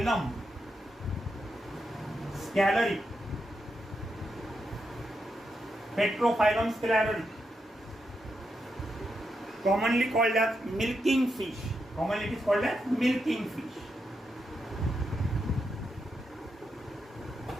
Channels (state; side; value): normal; both; correlation 0.84